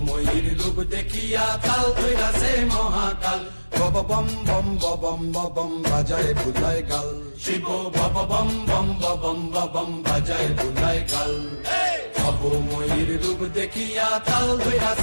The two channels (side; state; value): both; inverted; correlation -1.00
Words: রূপ দেখিয়া তাল ধৈরাছে মহাকাল। বব বম বম বম বম বাজায় বুলায় গাল, শিব বব বম বম বম বম বাজায় বুলায় গাল। ভবময়ীর রূপ দেখিয়া তাল